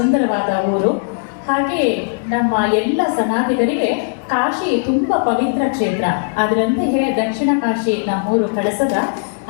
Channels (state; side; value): silent; right; digital silence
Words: ಊರು. ಹಾಗೆ ನಮ್ಮ ಎಲ್ಲ ಸನಾತಿಗರಿಗೆ ಕಾಶಿ ತುಂಬ ಪವಿತ್ರ ಕ್ಷೇತ್ರ. ಅದರಂತೆಯೇ ದಕ್ಷಿಣ ಕಾಶಿ ನಮ್ಮೂರು ಕಳಸದ